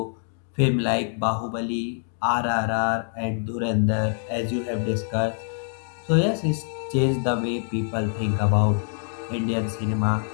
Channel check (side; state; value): right; silent; digital silence